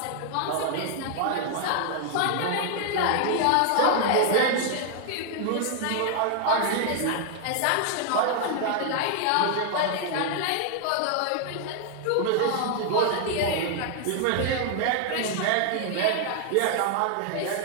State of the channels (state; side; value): different; both; correlation 0.00